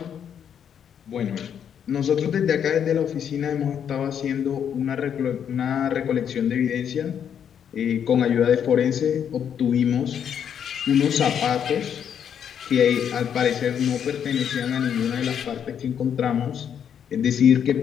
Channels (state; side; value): quieter; right; 8.5 dB